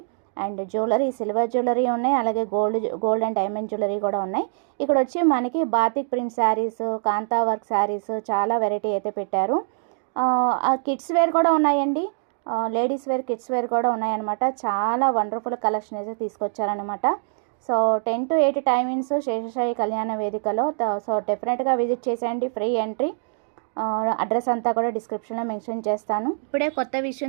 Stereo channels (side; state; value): left; silent; digital silence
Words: అండ్ జ్యువెలరీ, సిల్వర్ జ్యువెలరీ ఉన్నాయి, అలాగే గోల్డ్ అండ్ డైమండ్ జ్యువెలరీ కూడా ఉన్నాయి. ఇక్కడ వచ్చి మనకి బాతిక్ ప్రింట్ శారీస్, కాంతా వర్క్ శారీస్ చాలా వెరైటీ అయితే పెట్టారు. కిడ్స్ వేర్ కూడా ఉన్నాయండి. లేడీస్ వేర్, కిడ్స్ వేర్ కూడా ఉన్నాయన్నమాట. చాలా వండర్ఫుల్ కలెక్షన్ అయితే తీసుకొచ్చారనమాట. సో 10 to 8 టైమింగ్స్ శేషసాయి కళ్యాణ వేదికలో. సో డెఫినెట్గా విజిట్ చేసేయండి. Free entry. అడ్రస్ అంతా కూడా డిస్క్రిప్షన్లో మెన్షన్ చేస్తాను. ఇప్పుడే కొత్త